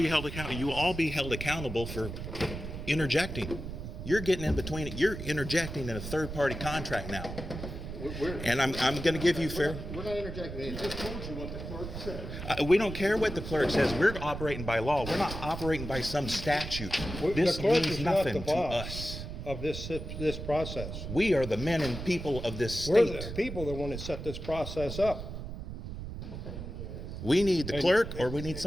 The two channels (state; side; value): noise; right; rumble, 8 dB below the sound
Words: held accountable. You will all be held accountable for interjecting. You're getting in between it. You're interjecting in a third-party contract now. we're. And I'm going to give you fair. We're not interjecting I anything. just told you what the clerk said. We don't care what the clerk says. We're operating by law. We're not operating by some statute. The This clerk means is not the nothing to boss us. of this process. We are the men and people of this We're state. the people that want to set this process up. We need the clerk, or we need